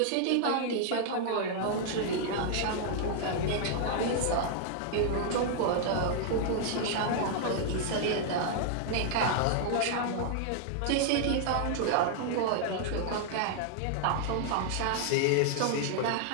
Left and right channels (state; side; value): different; both; correlation 0.00